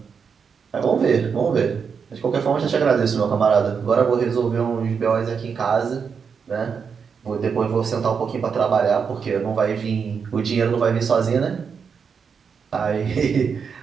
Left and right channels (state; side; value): quieter; left; 6.2 dB